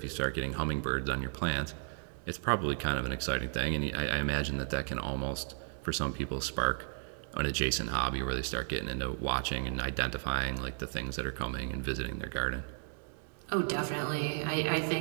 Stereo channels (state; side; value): silent; left; digital silence